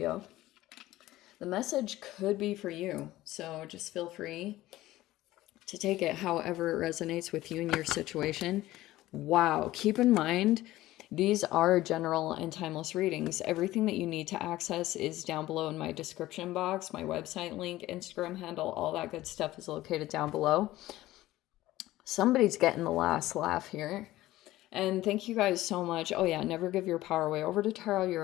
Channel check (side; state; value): right; quieter; 16.3 dB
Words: The message could be for you, so just feel free to take it however it resonates with you and your situation. Wow, keep in mind, these are general and timeless readings. Everything that you need to access is down below in my description box. My website link, Instagram handle, all that good stuff is located down below. Somebody's getting the last laugh here. And thank you guys so much. Oh yeah, never give your power away. Over to Tarot, you're